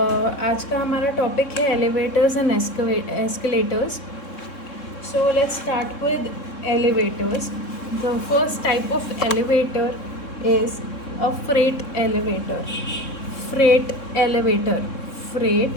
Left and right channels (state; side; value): late; right; 3.6 ms